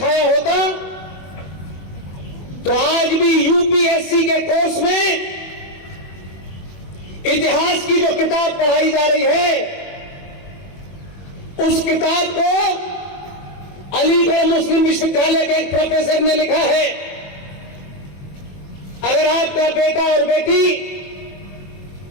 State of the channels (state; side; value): late; right; 21 ms